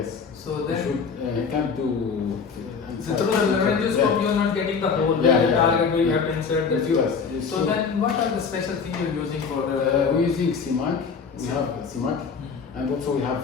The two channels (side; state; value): right; quieter; 5.7 dB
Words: So then he can't do. So through the laryngoscope, you are not getting the whole target. You have to insert the tube. So then, what are the special things you are using for the? We're using CMAC. We have CMAC. And also we have